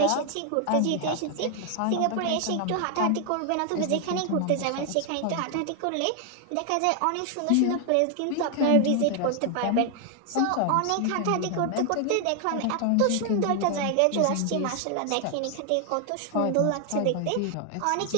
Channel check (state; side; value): different; both; correlation 0.00